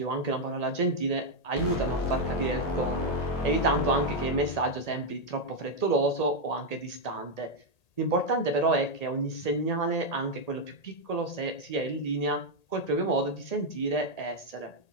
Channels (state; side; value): late; right; 1.8 ms